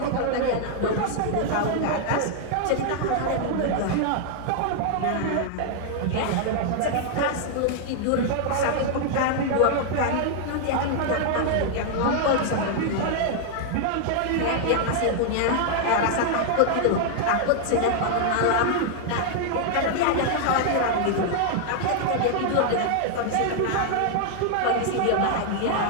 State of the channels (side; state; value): both; different; correlation 0.00